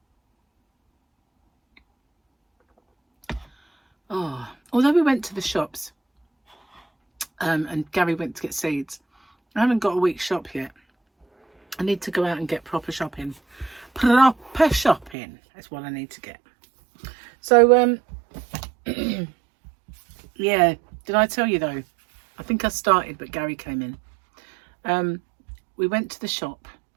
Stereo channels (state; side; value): drops out; left; at 15.2 s